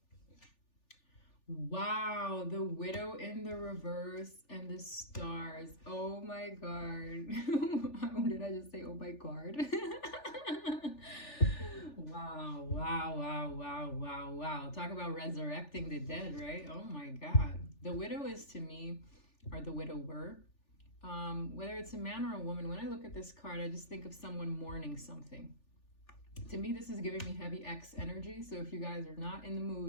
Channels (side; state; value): right; late; 3.4 ms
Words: Wow, the Widow in the reverse and the stars. Oh my god. How did I just say oh my god? Wow, wow, wow, wow, wow, wow. Talk about resurrecting the dead, right? Oh my god. The widow is to me, or the widower, whether it's a man or a woman, when I look at this card, I just think of someone mourning something. To me, this is giving me heavy X energy. So if you guys are not in the